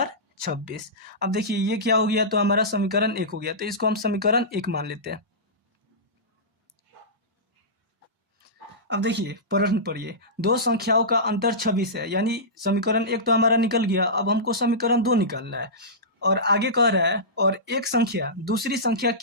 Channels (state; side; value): normal; both; correlation -0.17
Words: 26। अब देखिए ये क्या हो गया, तो हमारा समीकरण 1 हो गया, तो इसको हम समीकरण 1 मान लेते हैं। अब देखिए प्रश्न पढ़िए, दो संख्याओं का अंतर 26 है, यानी समीकरण 1 तो हमारा निकल गया। अब हमको समीकरण 2 निकालना है और आगे कह रहा है और एक संख्या दूसरी संख्या